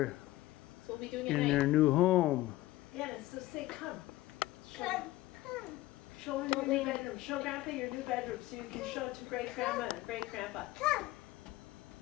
So we'll be doing it in at their night. new home. Yeah, so say come. Come. Show her your new bedroom. Show Grandpa your new bedroom so you can show it to great grandma and great grandpa. Come.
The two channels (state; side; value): quieter; right; 16.9 dB